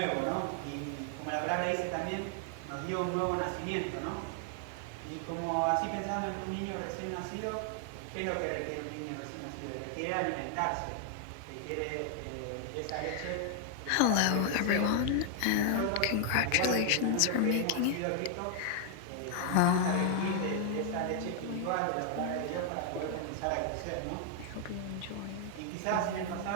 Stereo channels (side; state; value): both; different; correlation 0.00